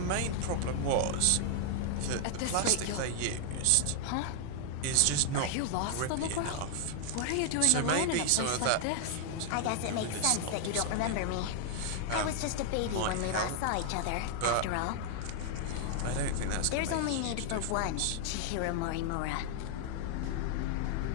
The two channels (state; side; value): different; both; correlation 0.00